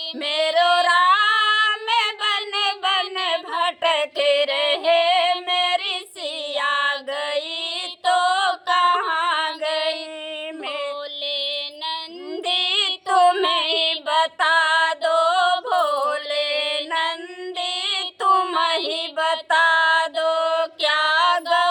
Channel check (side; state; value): both; identical; correlation 1.00